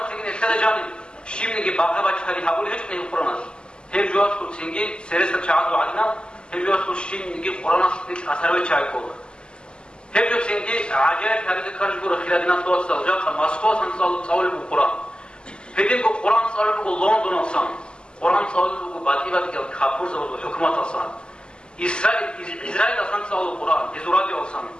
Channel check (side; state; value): right; late; 0.049 ms